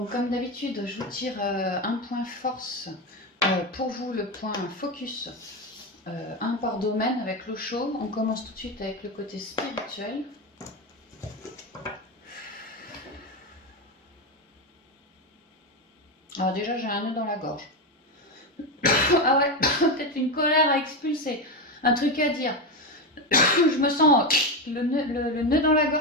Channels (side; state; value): both; normal; correlation 0.13